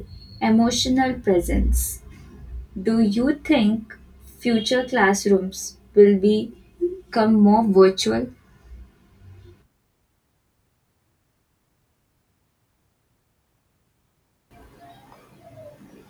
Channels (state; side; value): identical; both; correlation 1.00